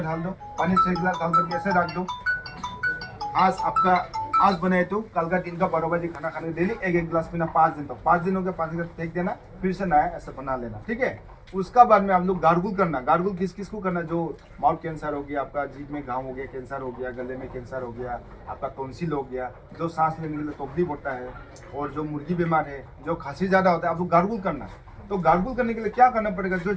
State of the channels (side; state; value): both; identical; correlation 1.00